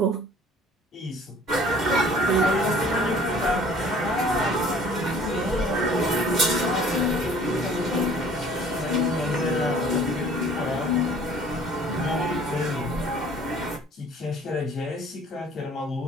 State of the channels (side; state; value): both; normal; correlation 0.52